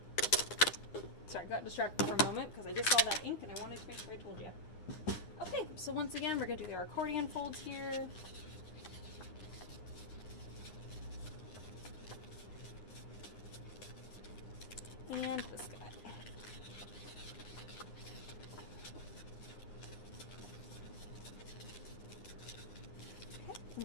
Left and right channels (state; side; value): late; right; 9.7 ms